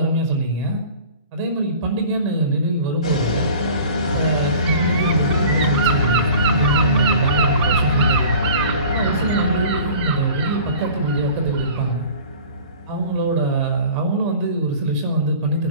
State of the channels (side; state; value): both; inverted; correlation -0.43